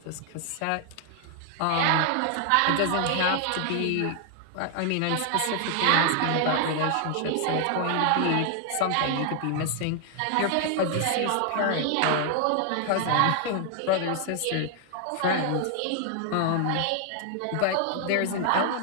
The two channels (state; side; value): different; both; correlation 0.00